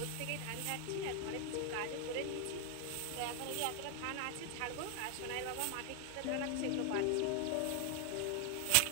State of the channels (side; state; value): both; different; correlation 0.00